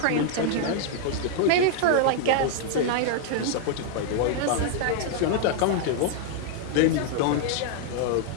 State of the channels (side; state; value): both; different; correlation 0.00